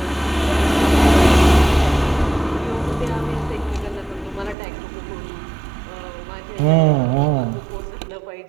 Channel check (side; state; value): left; drops out; at 4.5 s